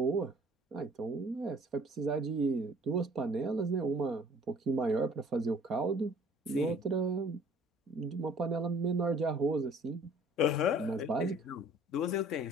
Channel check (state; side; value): normal; both; correlation 0.53